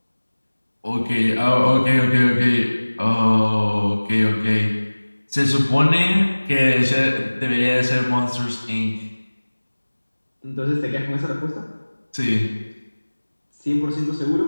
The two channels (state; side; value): inverted; both; correlation -1.00